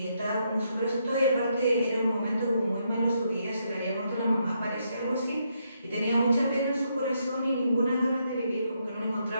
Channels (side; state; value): both; inverted; correlation -0.77